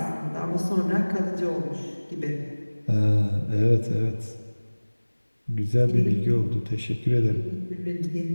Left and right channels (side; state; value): both; inverted; correlation -1.00